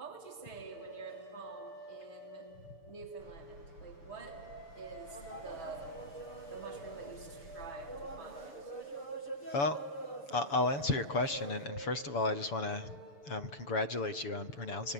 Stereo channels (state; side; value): late; right; 7.1 ms